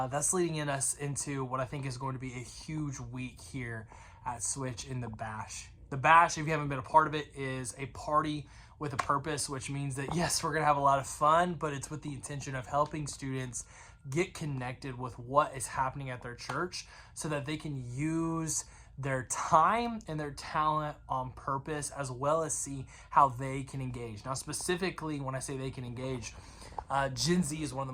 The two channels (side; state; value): both; identical; correlation 1.00